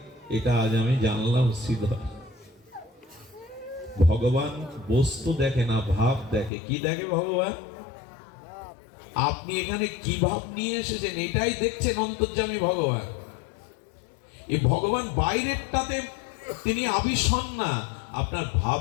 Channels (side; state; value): right; drops out; at 6.5 s